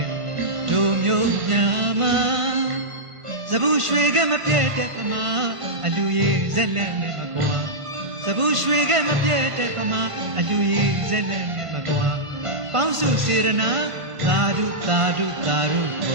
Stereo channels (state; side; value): late; left; 1.5 ms